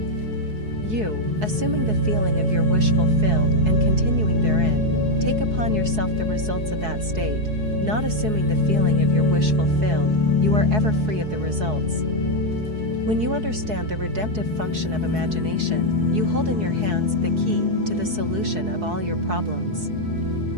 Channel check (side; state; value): left; late; 4.7 ms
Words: You, assuming the feeling of your wish fulfilled and continuing therein, take upon yourself the results of that state. Not assuming the feeling of your wish fulfilled, you are ever free of the results. When you understand the redemptive function of imagination, you hold in your hands the key to the solution of all your problems.